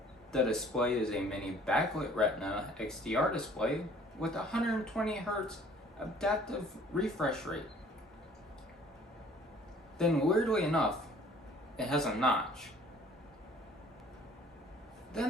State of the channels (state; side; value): normal; both; correlation 0.54